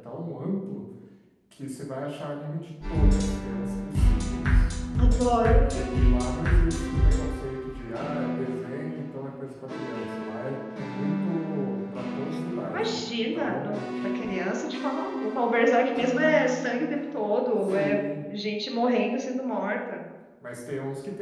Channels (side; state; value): both; identical; correlation 1.00